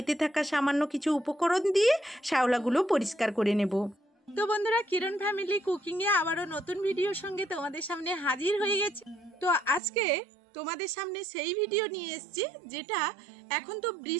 থাকা সামান্য কিছু উপকরণ দিয়ে শ্যাওলাগুলো পরিষ্কার করে নেব। তো বন্ধুরা, কিরণ ফ্যামিলি কুকিংয়ে আবারও নতুন ভিডিওর সঙ্গে তোমাদের সামনে হাজির হয়ে গেছে। তো আজকে তোমাদের সামনে সেই ভিডিও নিয়ে এসেছি যেটা এখন তো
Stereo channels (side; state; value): left; drops out; at 9.8 s